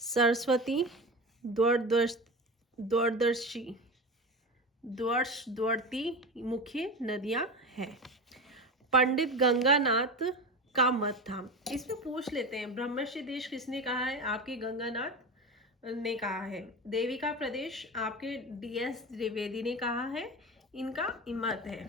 द्वादशी मुख्य नदियां हैं। पंडित गंगानाथ का मत था। इसमें पूछ लेते हैं ब्रह्मर्षि देश किसने कहा है? आपके गंगानाथ ने कहा है। देविका प्रदेश आपके DS त्रिवेदी ने कहा है, इनका मत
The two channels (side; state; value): both; normal; correlation 0.26